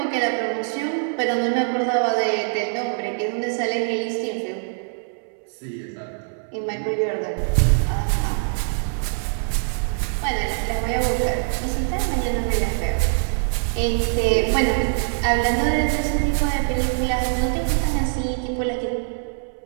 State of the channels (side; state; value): left; silent; 63 dB below the other